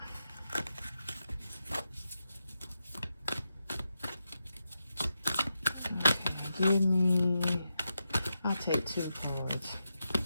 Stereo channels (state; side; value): inverted; both; correlation -0.87